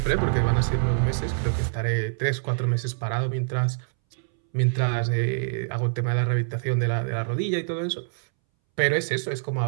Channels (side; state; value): left; silent; 62 dB below the other